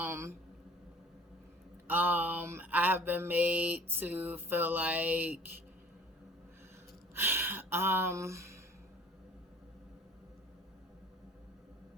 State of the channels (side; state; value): both; normal; correlation 0.50